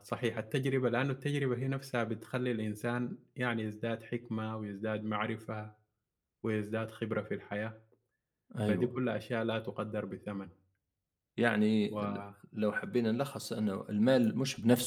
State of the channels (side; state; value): both; identical; correlation 1.00